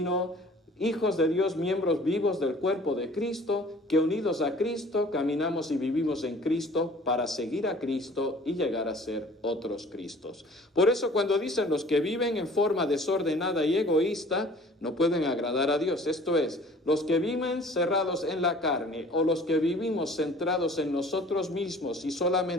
hijos de Dios, miembros vivos del cuerpo de Cristo, que unidos a Cristo caminamos y vivimos en Cristo para seguir a Cristo y llegar a ser otros Cristos. Por eso cuando dicen los que viven en forma desordenada y egoísta, no pueden agradar a Dios. Esto es, los que viven cerrados en la carne o los que vivimos centrados en nosotros mismos y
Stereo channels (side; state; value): both; normal; correlation 0.50